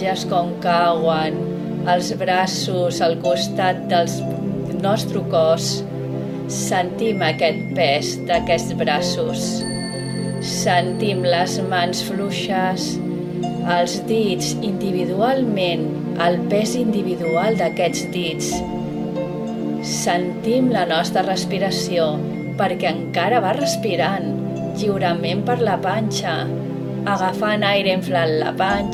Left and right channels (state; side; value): identical; both; correlation 1.00